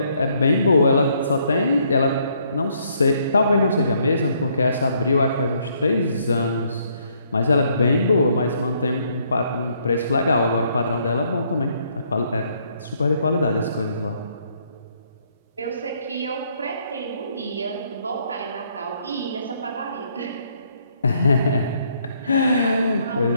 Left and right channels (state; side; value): inverted; both; correlation -0.69